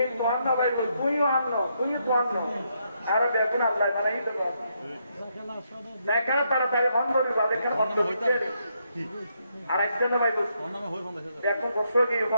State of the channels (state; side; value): inverted; both; correlation -0.77